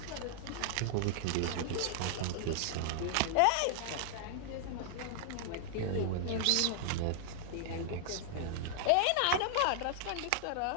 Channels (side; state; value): both; different; correlation -0.01